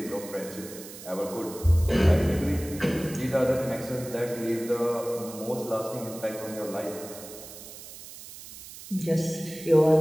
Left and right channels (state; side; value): noise; right; hiss, 15 dB below the sound